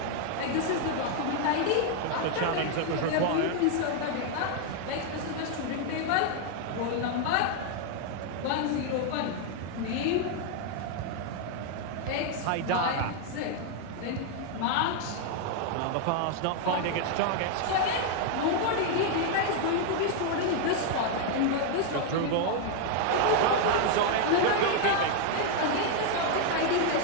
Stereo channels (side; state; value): both; different; correlation 0.00